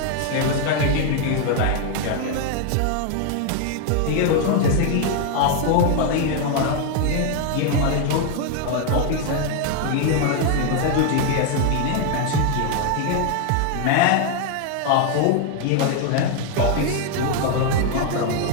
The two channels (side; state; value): both; different; correlation 0.01